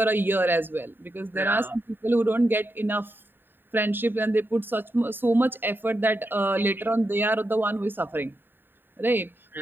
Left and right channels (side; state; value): left; late; 0.096 ms